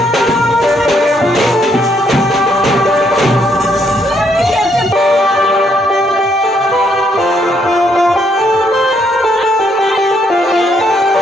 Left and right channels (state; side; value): normal; both; correlation 0.72